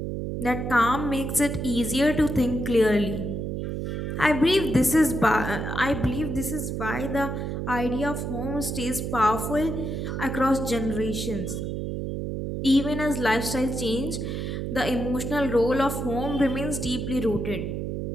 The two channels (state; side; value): noise; right; hum, 3 dB below the sound